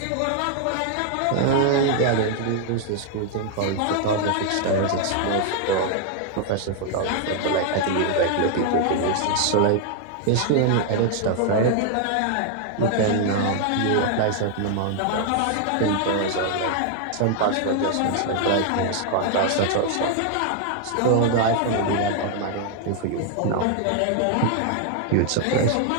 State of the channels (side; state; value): both; different; correlation 0.00